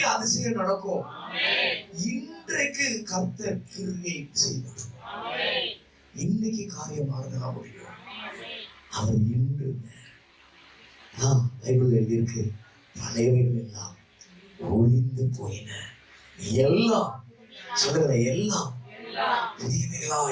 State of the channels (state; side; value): identical; both; correlation 1.00